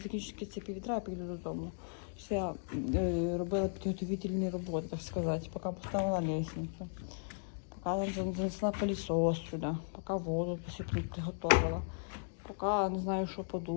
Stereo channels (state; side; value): silent; right; digital silence